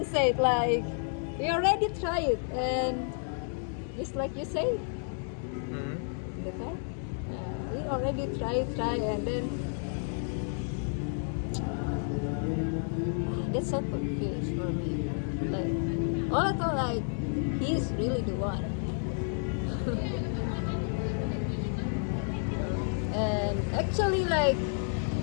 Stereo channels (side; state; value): right; silent; 57 dB below the other